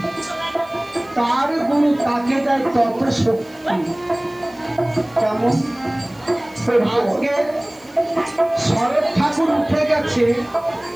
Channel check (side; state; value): right; noise; hiss, 28 dB below the sound